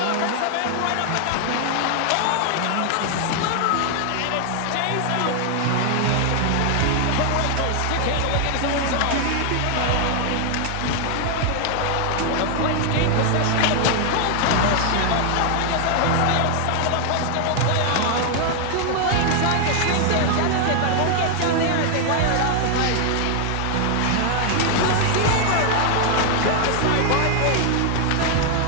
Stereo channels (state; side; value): different; both; correlation 0.00